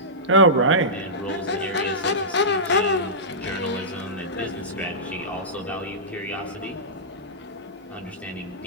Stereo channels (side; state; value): both; normal; correlation -0.15